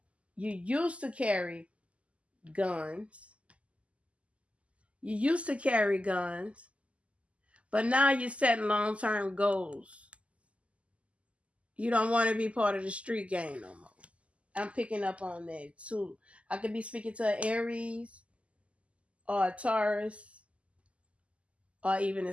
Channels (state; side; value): late; left; 0.061 ms